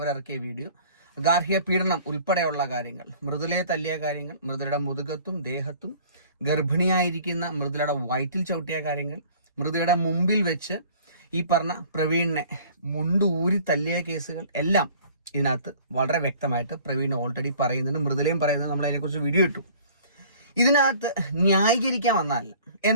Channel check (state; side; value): inverted; both; correlation -0.50